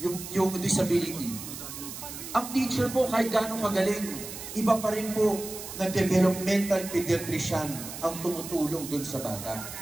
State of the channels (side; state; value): right; noise; hiss, 10 dB below the sound